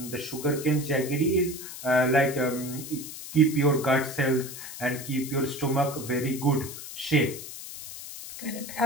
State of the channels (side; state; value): left; noise; hiss, 11 dB below the sound